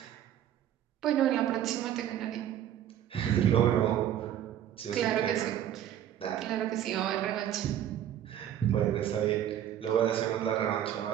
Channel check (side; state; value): left; quieter; 10.9 dB